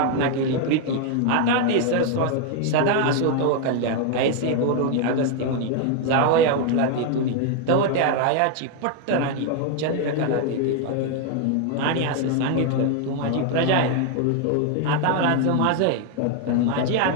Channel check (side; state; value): both; different; correlation 0.00